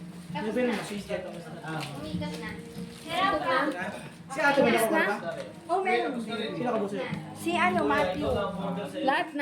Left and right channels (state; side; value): identical; both; correlation 1.00